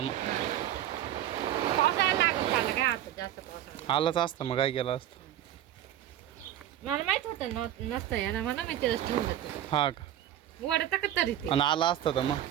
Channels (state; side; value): quieter; left; 11.8 dB